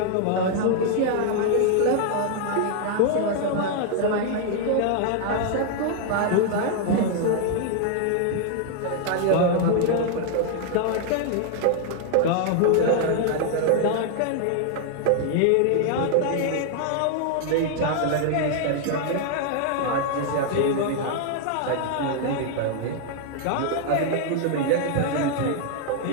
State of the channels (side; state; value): both; different; correlation 0.00